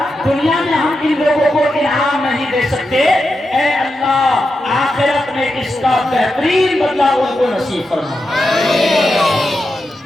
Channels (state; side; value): normal; both; correlation 0.88